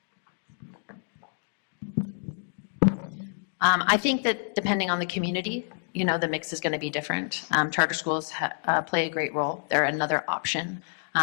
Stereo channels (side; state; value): right; silent; digital silence